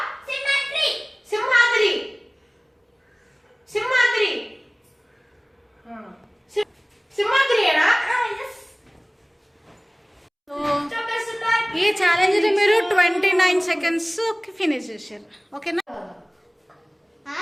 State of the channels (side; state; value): both; identical; correlation 1.00